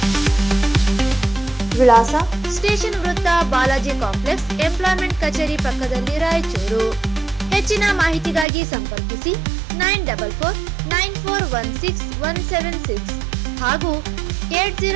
ವಿಳಾಸ: ಸ್ಟೇಷನ್ ವೃತ್ತ, ಬಾಲಾಜಿ ಕಾಂಪ್ಲೆಕ್ಸ್, ಎಂಪ್ಲಾಯ್ಮೆಂಟ್ ಕಚೇರಿ ಪಕ್ಕದಲ್ಲಿ, ರಾಯಚೂರು. ಹೆಚ್ಚಿನ ಮಾಹಿತಿಗಾಗಿ ಸಂಪರ್ಕಿಸಿ 9494161776 ಹಾಗೂ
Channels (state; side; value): drops out; left; at 8.5 s